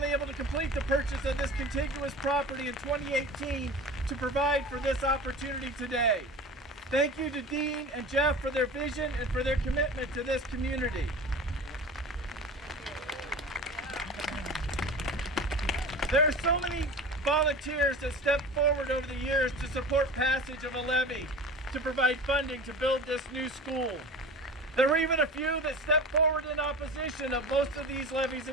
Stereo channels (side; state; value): both; normal; correlation 0.35